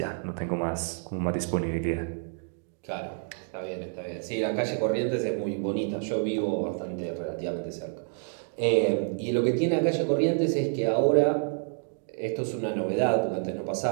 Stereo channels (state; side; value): silent; left; 59 dB below the other